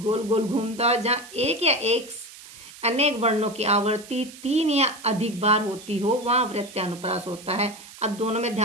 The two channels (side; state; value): right; noise; hiss, 18 dB below the sound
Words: गोल घूमता है, जहाँ एक या एक अनेक वर्णों की आवृत्ति 3 या अधिक बार होती हो, वहाँ वृत्त अनुप्रास होता है। अब दोनों में